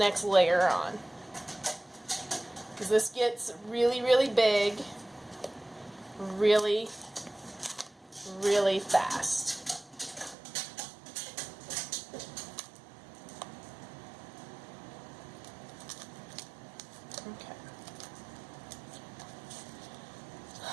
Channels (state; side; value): drops out; left; at 10.4 s